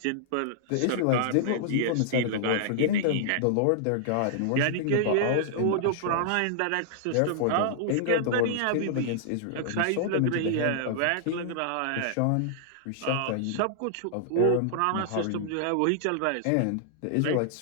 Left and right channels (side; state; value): both; different; correlation -0.01